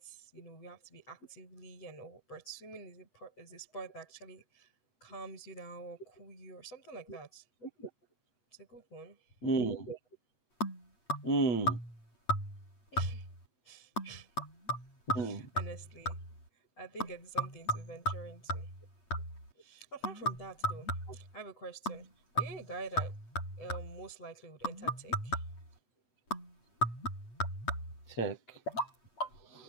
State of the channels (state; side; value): late; right; 8.6 ms